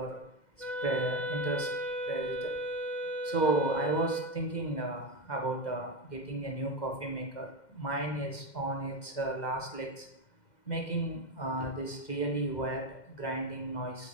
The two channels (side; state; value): right; late; 2.1 ms